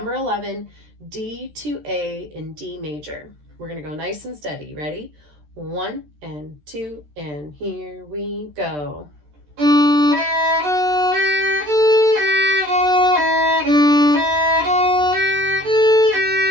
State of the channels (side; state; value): left; late; 13 ms